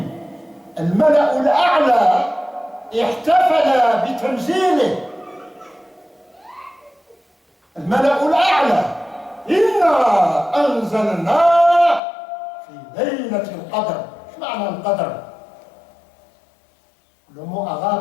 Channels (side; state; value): right; drops out; at 12.0 s